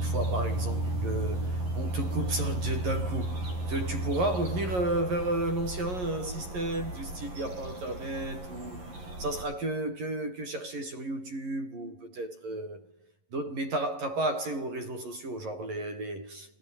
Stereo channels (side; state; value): left; late; 11 ms